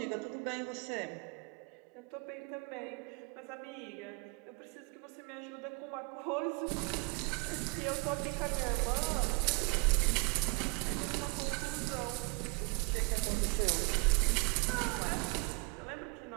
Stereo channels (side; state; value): left; quieter; 29.9 dB